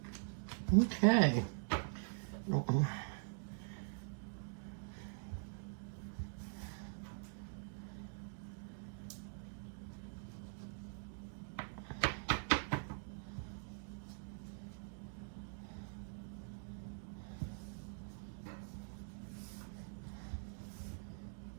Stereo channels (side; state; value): left; silent; digital silence